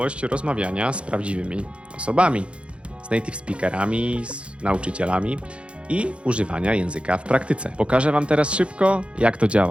rozmawiania z prawdziwymi osobami, z native speakerami, z nauczycielami i używania języka w praktyce. Pokażę wam teraz szybko, jak to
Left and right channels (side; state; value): left; late; 0.059 ms